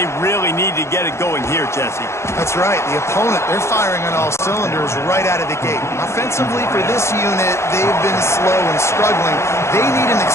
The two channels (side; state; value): right; late; 0.13 ms